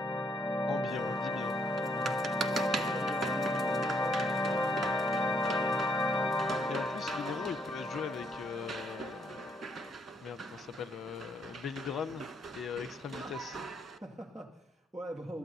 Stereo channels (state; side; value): normal; both; correlation 0.71